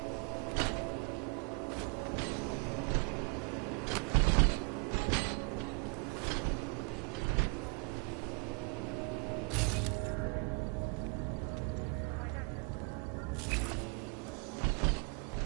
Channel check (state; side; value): quieter; left; 34.3 dB